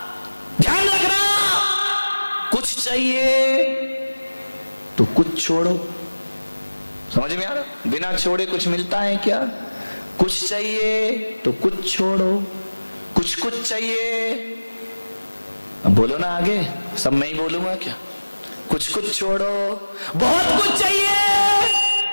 ध्यान रखना, कुछ चाहिए तो कुछ छोड़ो। समझ में आ रहा? बिना छोड़े कुछ मिलता है क्या? कुछ चाहिए तो कुछ छोड़ो, कुछ चाहिए। अब बोलो ना आगे, सब मैं ही बोलूंगा क्या? कुछ छोड़ो, बहुत कुछ चाहिए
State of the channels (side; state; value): both; inverted; correlation -1.00